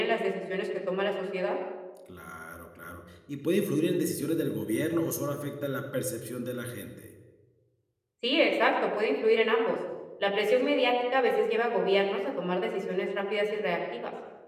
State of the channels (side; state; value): both; identical; correlation 1.00